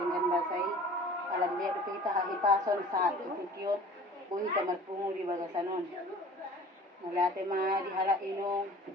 basay. Alam dia kita hahipason sa tututyon, buhi ka marpungo di bagasanon. Mula te dihala inong,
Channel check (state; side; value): normal; both; correlation 0.45